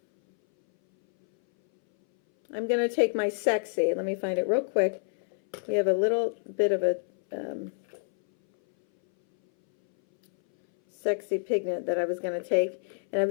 I'm going to take my Sexy. Let me find it real quick. We have a little bit of a Sexy pigment that I was going to take, and I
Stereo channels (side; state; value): right; silent; 59 dB below the other